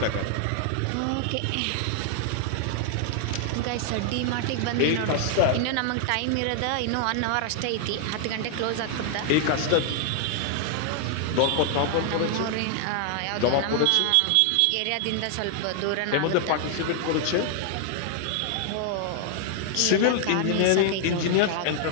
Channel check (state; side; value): different; both; correlation 0.00